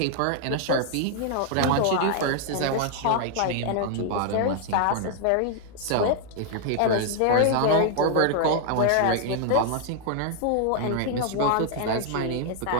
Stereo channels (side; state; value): both; different; correlation 0.00